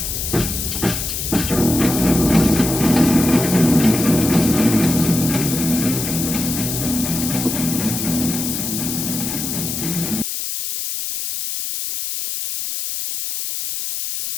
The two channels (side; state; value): left; noise; hiss, 4 dB below the sound